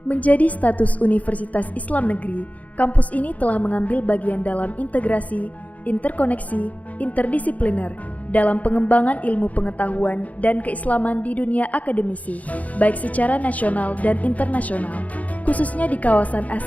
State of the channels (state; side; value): late; right; 0.072 ms